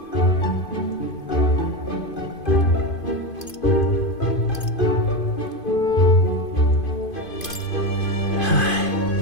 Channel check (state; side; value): late; right; 2.5 ms